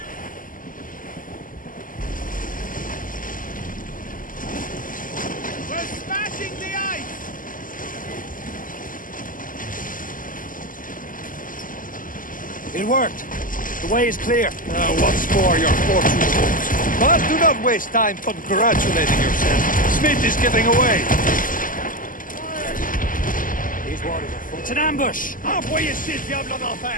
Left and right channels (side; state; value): right; late; 0.39 ms